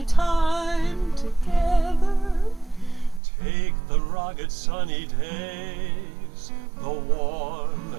time together. Take the rugged sunny days, the warm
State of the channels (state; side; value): drops out; left; at 3.2 s